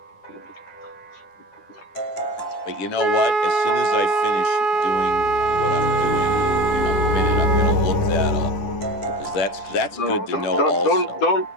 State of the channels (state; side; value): late; right; 10 ms